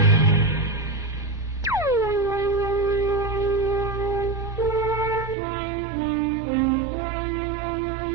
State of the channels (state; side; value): drops out; left; at 5.4 s